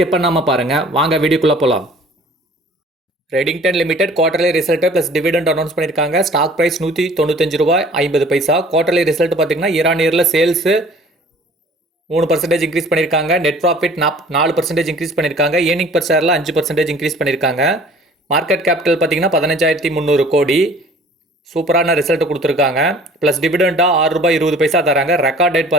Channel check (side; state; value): both; normal; correlation 0.50